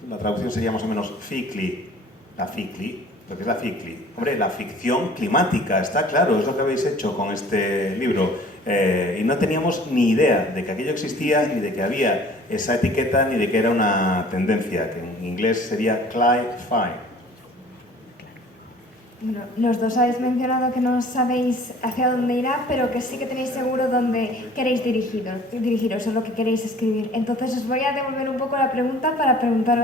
traducción sería más o menos ficli, la ficli? Lo que es la ficli. Hombre, la ficción climática, está claro, es lo que habéis hecho con este libro. Y no teníamos ni idea de que aquello existía, ni de que había esa etiqueta, ni de que era una tendencia, que en inglés sería cli-fi. Bueno, los dos habéis mencionado que no sabéis hacia dónde irá, pero que sí que tenéis seguro dónde queréis dirigiros o lo que queréis escribir. Entonces os voy a devolver un poco la pregunta para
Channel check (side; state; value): both; normal; correlation 0.49